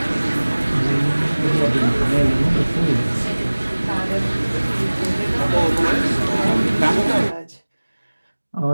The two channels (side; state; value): both; inverted; correlation -1.00